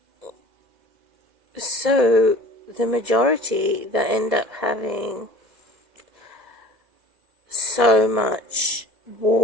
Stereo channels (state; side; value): late; left; 2.0 ms